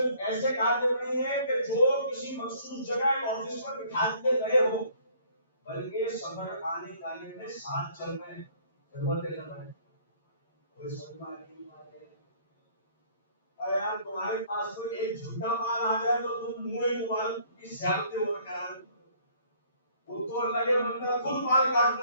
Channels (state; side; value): inverted; both; correlation -0.58